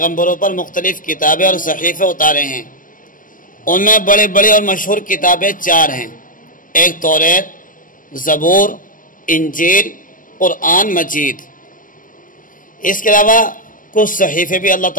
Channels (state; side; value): late; right; 0.39 ms